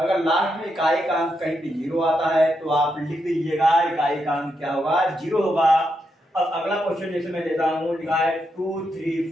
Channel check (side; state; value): both; normal; correlation 0.82